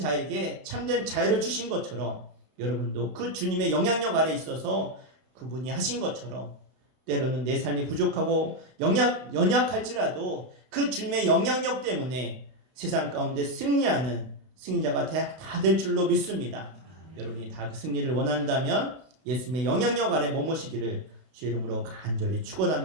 참된 자유를 주신 것처럼 여러분도 그 주님의 영향력 아래 있어서 그분이 하신 것처럼 때로는 내 삶이 부족하고 연약할지라도 그 주님의 영향력 때문에 세상 가운데 승리하는 승리자가 다 될 줄로 믿습니다. 여러분이 다 그 승리를 원한다면 예수님의 영향력 아래 머무시기를 주의 이름으로 간절히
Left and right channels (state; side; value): late; left; 32 ms